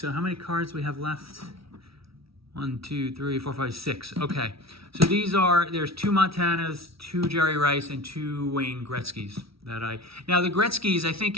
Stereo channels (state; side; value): late; left; 0.76 ms